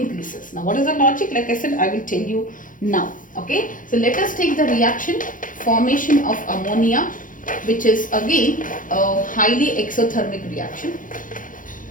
Now what is the logic? Like I said, I will tell you now. Okay, so let us take the reaction formation of ammonia, which is again a highly exothermic reaction.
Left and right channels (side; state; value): right; late; 0.39 ms